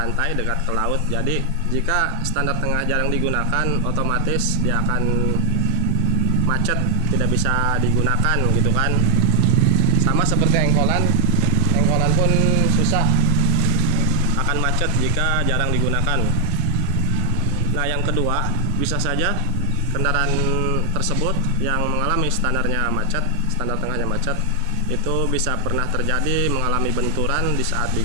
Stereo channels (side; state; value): both; different; correlation 0.00